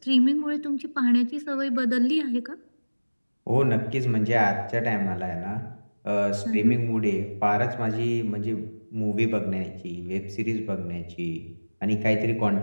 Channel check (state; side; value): inverted; both; correlation -1.00